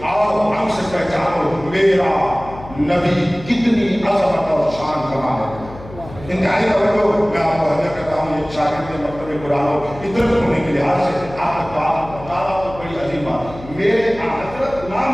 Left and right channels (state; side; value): noise; left; hum, 16 dB below the sound